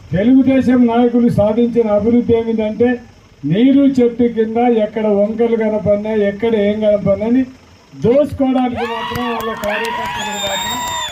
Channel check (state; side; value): identical; both; correlation 1.00